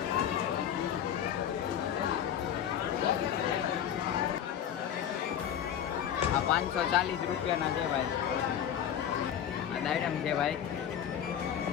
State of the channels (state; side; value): quieter; right; 9.5 dB